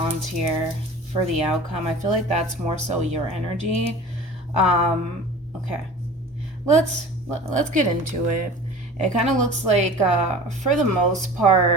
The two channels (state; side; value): normal; both; correlation 0.40